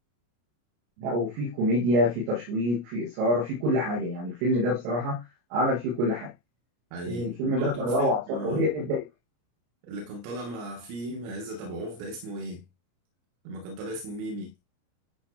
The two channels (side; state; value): left; late; 33 ms